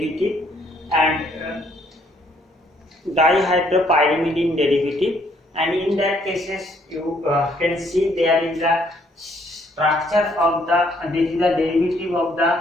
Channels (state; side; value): normal; both; correlation 0.67